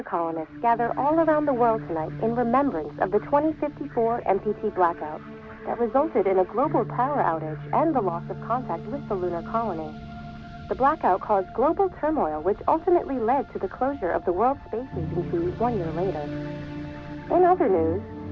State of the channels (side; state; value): both; identical; correlation 1.00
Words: colonists gather all around the world tonight in remembrance of the 2054 MPT blackout that resulted in a global power outage and the loss of contact with the lunar colony. The blackout caused global turmoil, which ultimately led to the closure of the World Space Agency 1 year later. In other news,